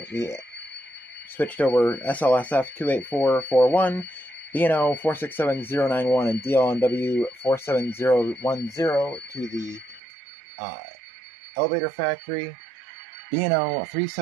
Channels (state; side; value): drops out; left; at 10.0 s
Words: We switched over SLSF 28441, BNO 467091, and DLNW 47010 to the elevator factory. BNO